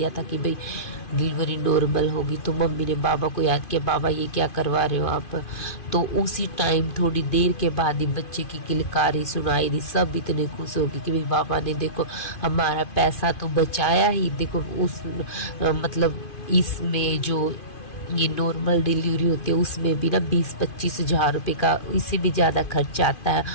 था कि भाई डिलीवरी नॉर्मल होगी। तो मम्मी ने बाबा को याद किया, बाबा ये क्या करवा रहे हो आप। तो उसी टाइम थोड़ी देर के बाद ही बच्चे की किलकारी सुनाई दी। सब इतने खुश हो गए कि भाई बाबा ने देखो हमारा पैसा तो बचाया ही। देखो उस मतलब इसमें जो ये नॉर्मल डिलीवरी होती है उसमें भी ना 20-25 हज़ार रुपये का इससे भी ज़्यादा खर्चा आता है।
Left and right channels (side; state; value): right; late; 2.5 ms